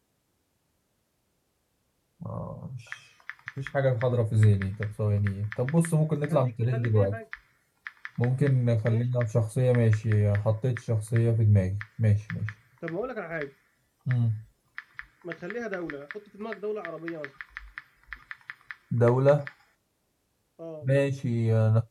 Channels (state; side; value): identical; both; correlation 1.00